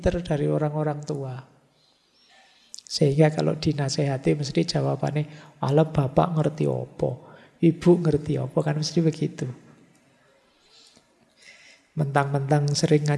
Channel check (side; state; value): both; identical; correlation 1.00